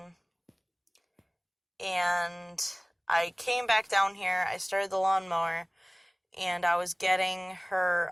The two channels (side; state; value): both; identical; correlation 1.00